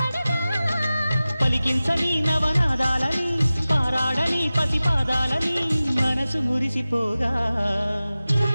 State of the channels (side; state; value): both; inverted; correlation -0.96